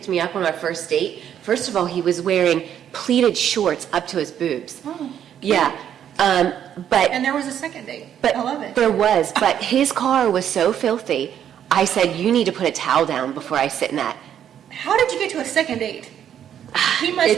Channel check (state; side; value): quieter; left; 9.6 dB